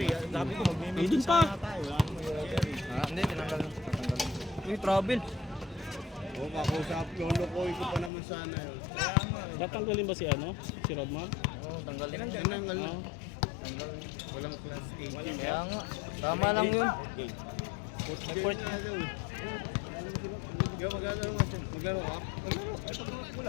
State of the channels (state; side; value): drops out; right; at 8.1 s